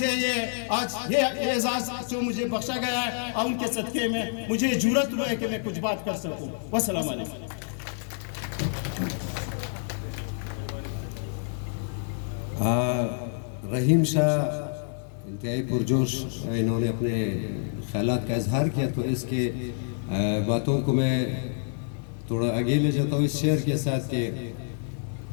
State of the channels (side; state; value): right; silent; digital silence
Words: یہ اعزاز جو مجھے بخشا گیا ہے، اور ان کے صدقے میں مجھے جرأت ہوا ہے کہ میں کچھ بات کر سکوں. والسلام علیکم. رحیم شاہ انتہائی پرجوش انہوں نے اپنے خیالات کا اظہار کیا، تو اس کے باتوں کو میں تھوڑا آگے لے جاتا ہوں اس شعر کے ساتھ کہ